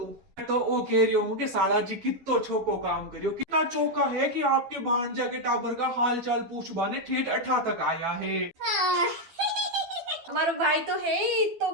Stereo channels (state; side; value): late; left; 12 ms